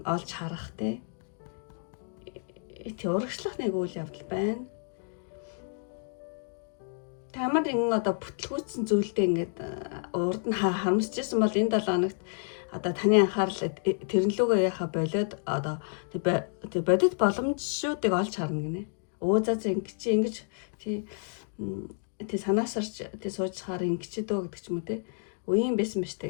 олж харах те урагшлах нэг үйл явдал байна. Тамар ингэ одоо бүтлгүүцсэн зүйлдээ ингээд урд нь харамсчихсан бол энэ 7 хоногт одоо таны анхаарал тэрнлүүгээ яхаа болоод одоо тэг бодит боломжуудыг олж харна гинэ. За ингэж тий санаасарч тий сууж хаар ингэж дөө гэдэг ч юм уу тий. Үеийн байсан биш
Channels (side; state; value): right; silent; 58 dB below the other